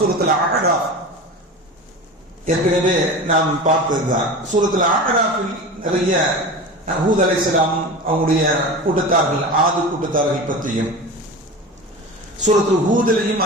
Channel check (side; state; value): both; normal; correlation 0.30